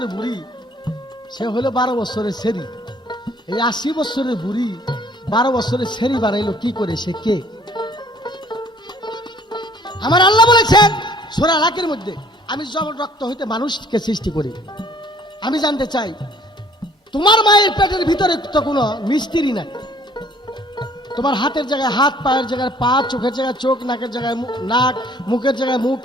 বুড়ি, সে হলো 12 বছরের সেরি। এই 80 বছরের বুড়ি 12 বছরের সেরি বানাইলো কি করে? সে কে? আমার আল্লাহ বলেছেন সূরা আলাকের মধ্যে, আমি জমাট রক্ত হইতে মানুষকে সৃষ্টি করি। আমি জানতে চাই, তোমার মায়ের পেটের ভিতরে তো কোনো মিস্ত্রি নাই। তোমার হাতের জায়গায় হাত, পায়ের জায়গায় পা, চোখের জায়গায় চোখ, নাকের জায়গায় নাক, মুখের জায়গায় মুখ,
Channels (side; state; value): both; normal; correlation 0.57